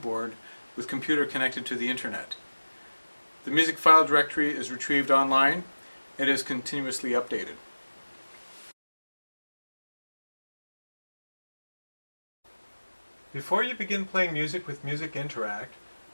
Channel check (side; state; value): both; inverted; correlation -1.00